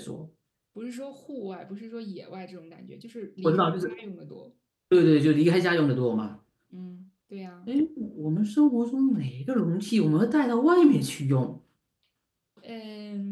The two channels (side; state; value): both; identical; correlation 1.00